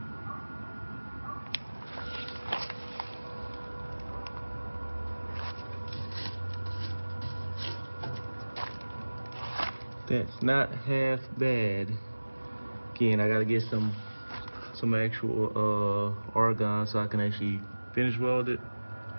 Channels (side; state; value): both; inverted; correlation -1.00